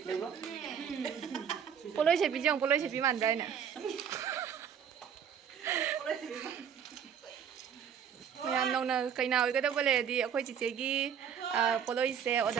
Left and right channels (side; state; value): left; quieter; 8.0 dB